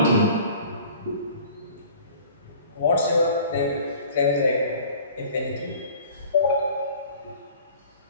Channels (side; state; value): both; inverted; correlation -0.48